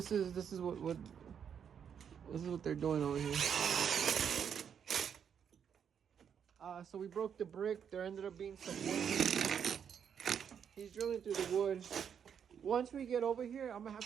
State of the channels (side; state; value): left; quieter; 7.8 dB